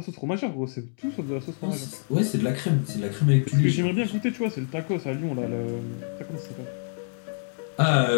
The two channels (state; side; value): silent; right; 61 dB below the other